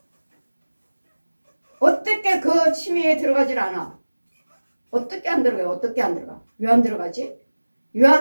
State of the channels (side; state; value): both; inverted; correlation -1.00